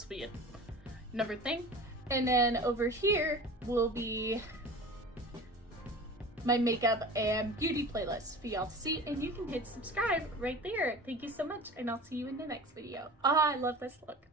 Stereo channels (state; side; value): normal; both; correlation 0.37